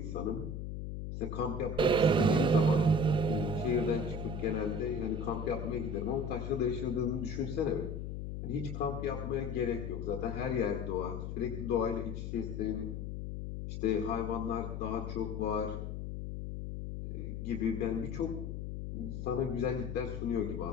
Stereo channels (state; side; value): noise; left; hum, 5 dB below the sound